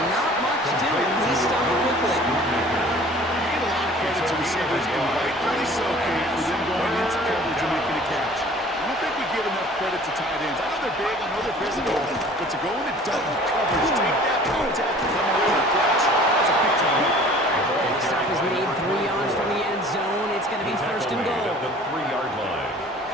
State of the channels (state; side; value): normal; both; correlation 0.48